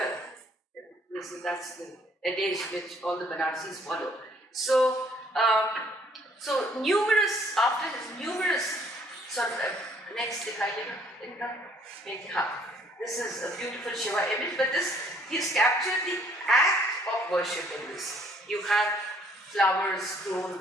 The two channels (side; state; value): both; normal; correlation 0.63